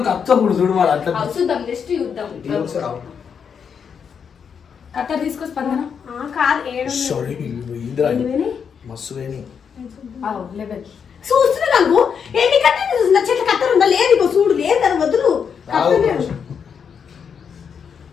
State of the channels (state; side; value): quieter; right; 6.9 dB